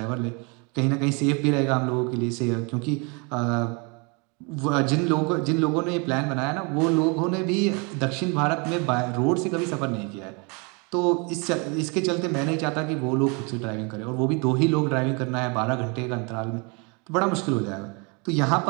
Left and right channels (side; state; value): left; quieter; 31.8 dB